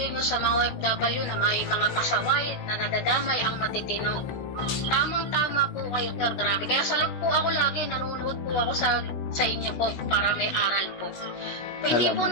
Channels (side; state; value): right; late; 17 ms